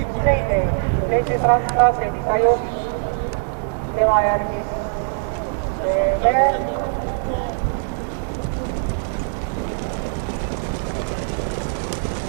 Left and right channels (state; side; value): silent; left; 63 dB below the other